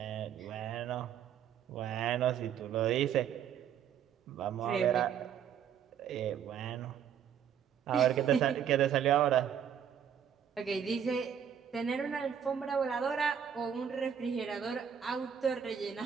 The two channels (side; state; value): left; quieter; 8.5 dB